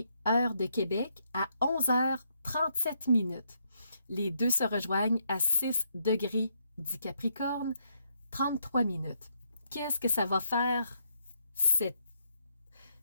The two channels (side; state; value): both; inverted; correlation -0.75